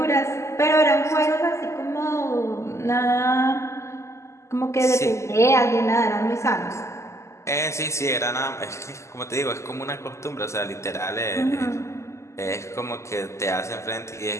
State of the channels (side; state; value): right; late; 0.13 ms